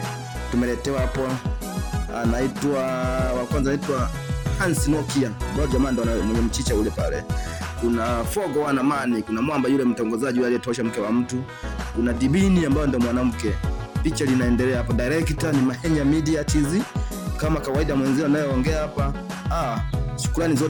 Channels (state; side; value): identical; both; correlation 1.00